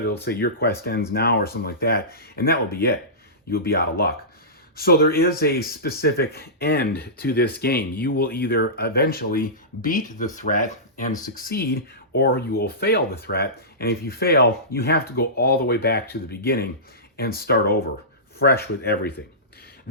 say your quest ends now or something like that, and that will be it. You'll be out of luck. So there is a specific end to this game. You will either eventually beat the threat and succeed, or you will fail the threat. And if you fail, you have to go all the way back to the beginning and start over, fresh with everything.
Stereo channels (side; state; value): both; normal; correlation -0.20